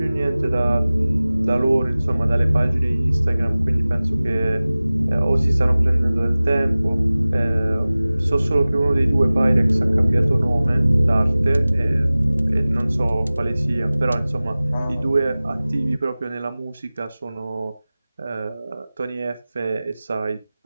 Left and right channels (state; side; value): inverted; both; correlation -0.98